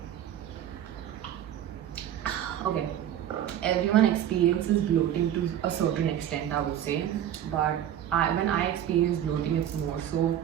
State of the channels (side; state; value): left; quieter; 10.7 dB